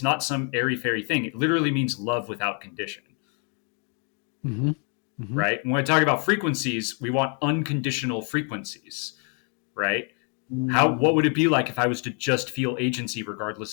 not some airy fairy thing. It literally means love without condition, Mm-hmm. Mm-hmm. right? When I talk about frequencies, we want unconditional frequencies, right? What Mm. would it be like if I was to just feel agency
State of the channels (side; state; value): right; quieter; 39.8 dB